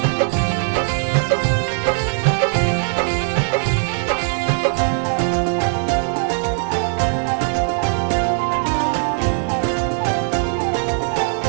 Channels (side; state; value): left; silent; digital silence